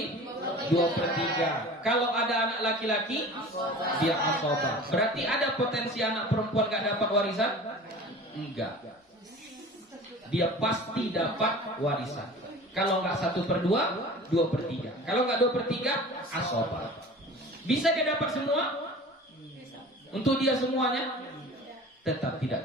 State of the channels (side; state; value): both; normal; correlation 0.40